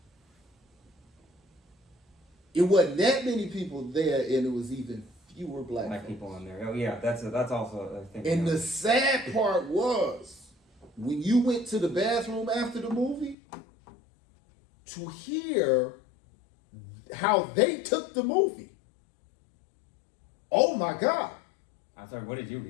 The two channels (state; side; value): drops out; right; at 13.4 s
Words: It wasn't that many people there, and it was even fewer black Black folks. people in there. Oh yeah, that's also a thing. And yeah. the sad part was when you went to the bathroom after the movie, to hear how they took the movie. Oh my God. I'm sorry, what did you